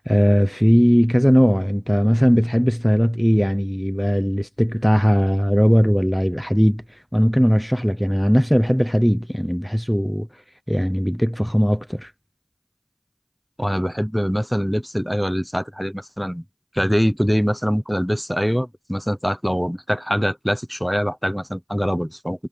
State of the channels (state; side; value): identical; both; correlation 1.00